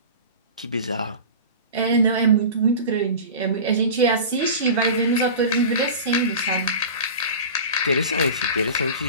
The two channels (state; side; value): inverted; both; correlation -0.33